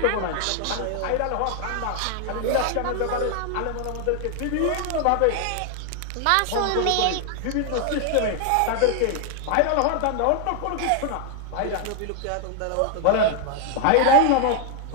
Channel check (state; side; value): different; both; correlation 0.00